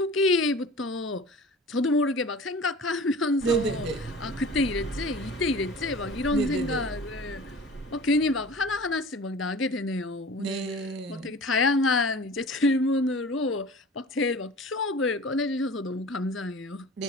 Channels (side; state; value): both; normal; correlation 0.40